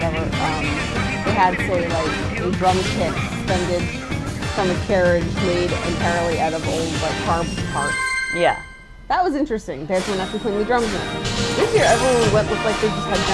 they had, say, like, a drum kit suspended from a carriage made entirely out of old, like, car parts. yeah. That was interesting. They had someone actually playing the drums in it. This year, everyone we went looked like they just had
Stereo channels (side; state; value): both; identical; correlation 1.00